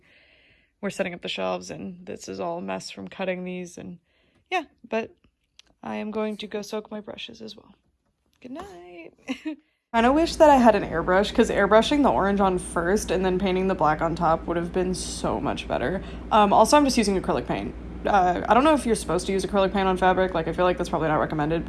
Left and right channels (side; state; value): both; identical; correlation 1.00